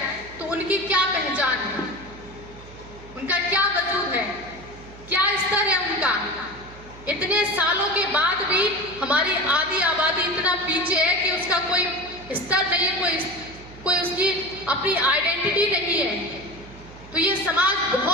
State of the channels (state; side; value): noise; right; hum, 19 dB below the sound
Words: तो उनकी क्या पहचान है, उनका क्या वजूद है? का। इतने सालों के बाद भी हमारी आधी आबादी इतना पीछे है कि उसका कोई स्तर नहीं है, कोई उसकी अपनी आइडेंटिटी नहीं है। तो ये समाज